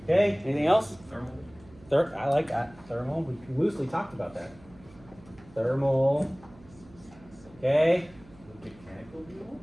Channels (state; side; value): noise; right; hum, 23 dB below the sound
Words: Okay, anything else? Thermal. I like that. Thermal, we loosely talked about that. Thermal. Okay. Mechanical